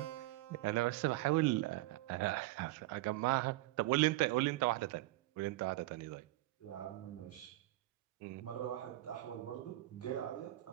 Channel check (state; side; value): quieter; left; 17.9 dB